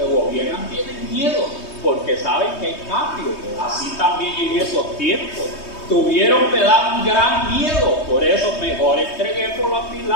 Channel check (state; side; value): late; right; 3.2 ms